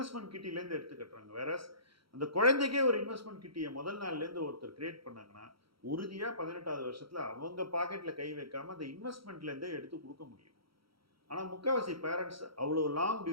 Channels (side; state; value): left; late; 0.75 ms